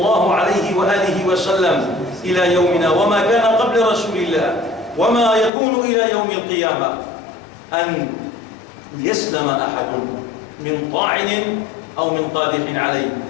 عليه وآله وسلم إلى يومنا، وما كان قبل رسول الله، وما يكون إلى يوم القيامة، أن يسلم أحد من طاعن أو من قادح عليه.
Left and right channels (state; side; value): drops out; right; at 5.5 s